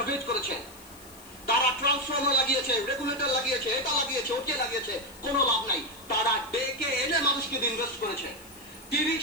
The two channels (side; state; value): left; noise; hiss, 21 dB below the sound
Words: করেছে। তারা ট্রান্সফর্মার লাগিয়েছে, রেগুলেটর লাগিয়েছে, এটা লাগিয়েছে, ওকে লাগিয়েছে, কোনো লাভ নাই। তারা ডেকে এনে মানুষকে ইনভেস্ট করেছে। 30